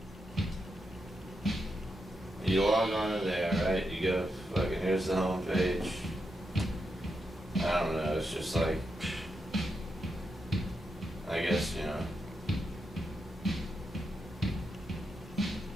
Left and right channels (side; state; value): both; normal; correlation 0.85